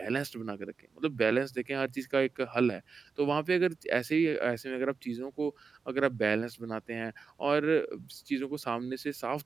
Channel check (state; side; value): quieter; left; 5.1 dB